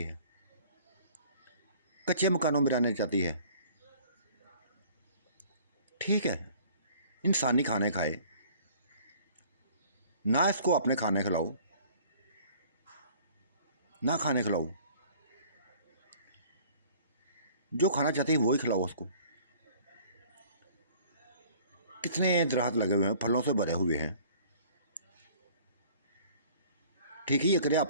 है, कच्चे मकानों में रहना चाहती है। ठीक है, इंसानी खाने खाए ना, इसको अपने खाने खिलाओ ना खाने खिलाओ। जो खाना चाहती है वही खिलाओ उसको। कितने दरख्त लगे हुए हैं, फलों से भरे हुए हैं, ठीक है, ये करे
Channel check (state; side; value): inverted; both; correlation -0.52